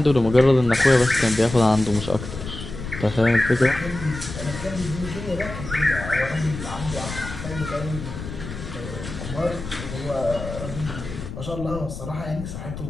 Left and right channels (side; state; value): left; noise; rumble, 9 dB below the sound